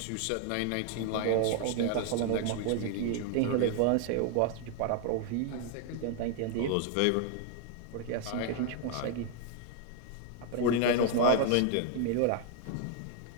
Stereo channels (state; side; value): different; both; correlation 0.00